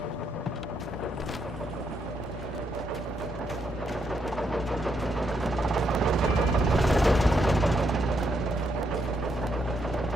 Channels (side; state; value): both; normal; correlation 0.78